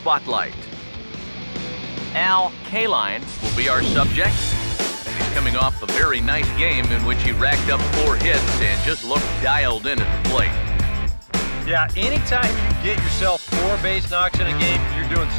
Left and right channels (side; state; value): both; inverted; correlation -1.00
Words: KALINE will be our subject. He's coming off a very nice game in which he racked up 4 hits and just looked dialed in at the plate. Yeah, anytime you get yourself 4 base knocks in a game, you're doing